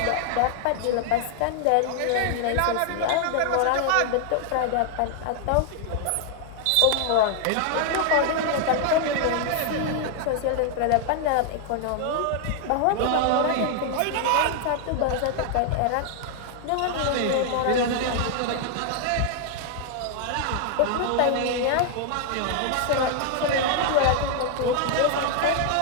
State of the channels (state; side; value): different; both; correlation 0.00